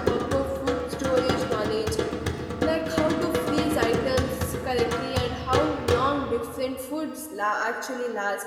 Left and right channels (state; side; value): identical; both; correlation 1.00